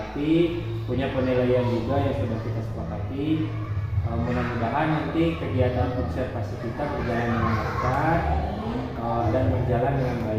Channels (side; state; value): both; identical; correlation 1.00